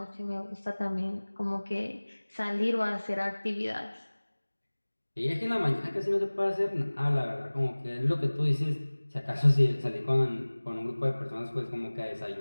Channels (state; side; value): inverted; both; correlation -1.00